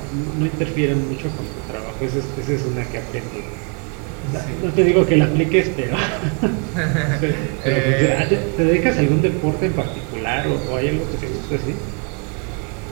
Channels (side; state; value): left; quieter; 37.7 dB